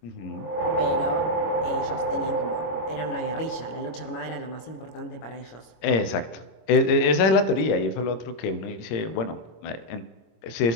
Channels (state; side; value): late; right; 25 ms